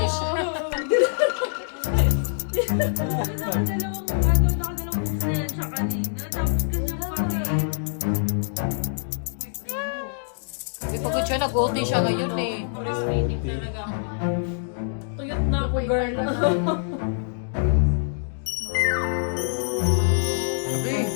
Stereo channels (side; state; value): right; silent; digital silence